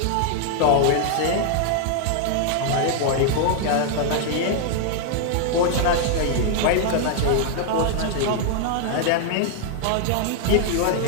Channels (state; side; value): different; both; correlation -0.01